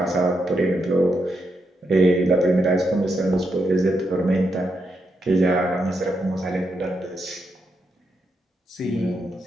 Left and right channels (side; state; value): both; normal; correlation 0.82